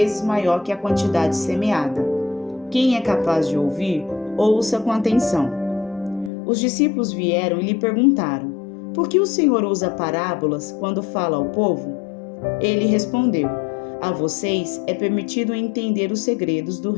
maior que a quantidade semeada. Quem é capaz de ouvir, ouça com atenção. Os discípulos vieram e lhe perguntaram: Por que o Senhor usa parábolas quando fala ao povo? Ele respondeu: A vocês é permitido entender os segredos do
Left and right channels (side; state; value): right; drops out; at 6.3 s